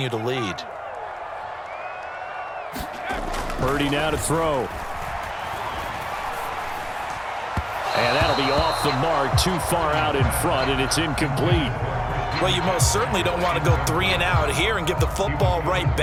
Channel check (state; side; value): identical; both; correlation 1.00